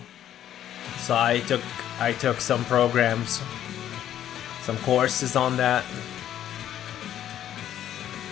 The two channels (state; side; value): quieter; right; 11.2 dB